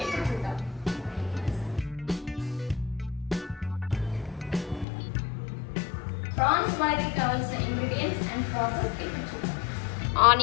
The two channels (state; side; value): drops out; right; at 4.9 s